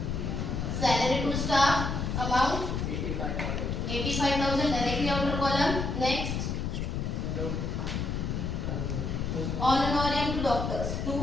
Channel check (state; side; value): noise; left; rumble, 2 dB below the sound